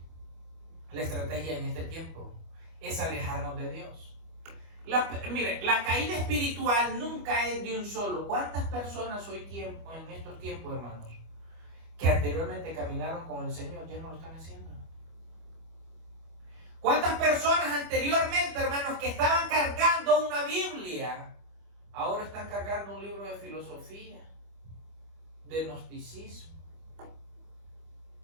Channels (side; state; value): left; late; 25 ms